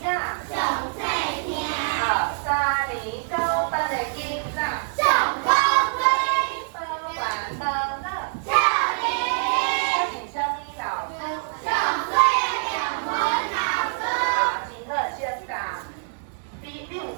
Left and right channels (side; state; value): left; silent; digital silence